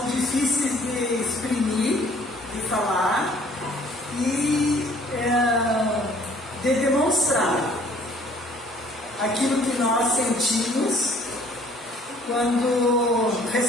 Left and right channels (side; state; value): both; normal; correlation 0.57